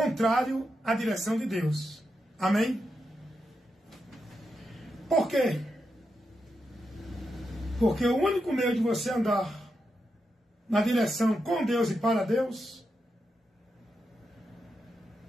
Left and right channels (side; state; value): both; normal; correlation 0.86